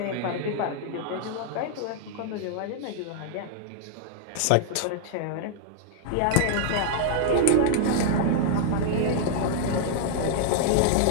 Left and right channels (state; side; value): different; both; correlation -0.01